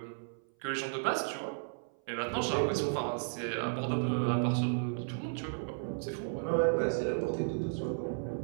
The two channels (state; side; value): silent; left; 55 dB below the other